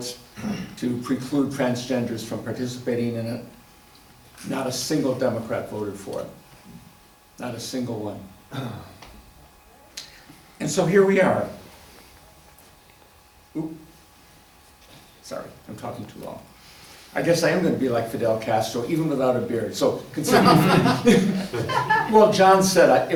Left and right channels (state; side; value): identical; both; correlation 1.00